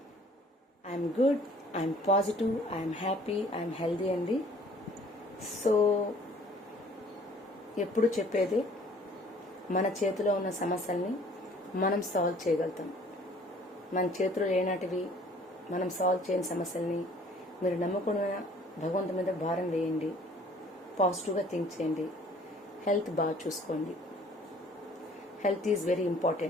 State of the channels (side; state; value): both; normal; correlation 0.54